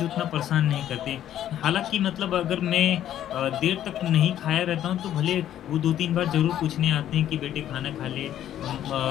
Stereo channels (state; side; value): quieter; right; 11.4 dB